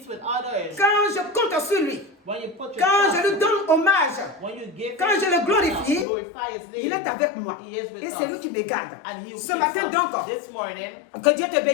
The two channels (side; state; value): right; drops out; at 6.1 s